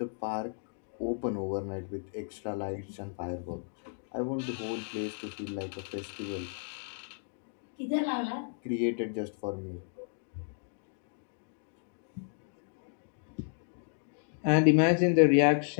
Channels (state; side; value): silent; right; digital silence